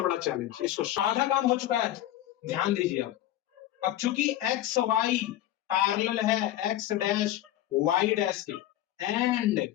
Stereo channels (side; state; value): right; quieter; 13.4 dB